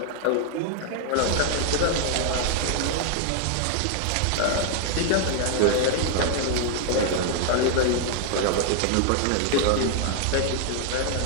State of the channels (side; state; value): both; different; correlation 0.00